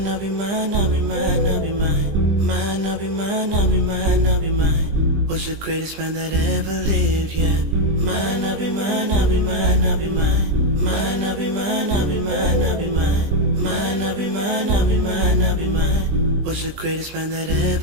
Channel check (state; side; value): late; left; 20 ms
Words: I'll be mine, I'll be mine, I'll be mine. Mine, I'll be mine, I'll be mine, I'll be mine. Was the greatest man that ever lived, yeah. Mine, I'll be mine, I'll be mine, I'll be mine. Mine, I'll be mine, I'll be mine, I'll be mine. Mine, I'll be mine, I'll be mine, I'll be mine. Was the greatest man that